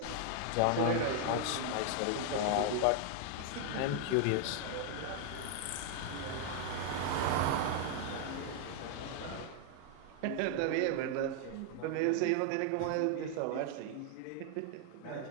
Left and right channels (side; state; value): both; different; correlation 0.00